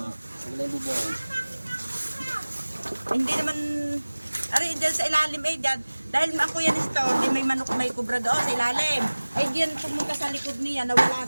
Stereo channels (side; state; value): both; inverted; correlation -1.00